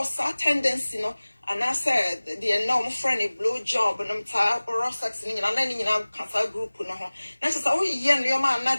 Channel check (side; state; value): both; inverted; correlation -1.00